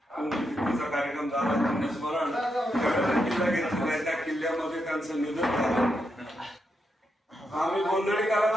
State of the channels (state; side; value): normal; both; correlation 0.83